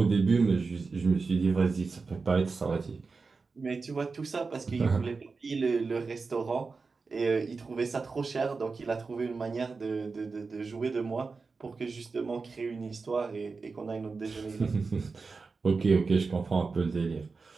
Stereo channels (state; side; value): quieter; left; 4.4 dB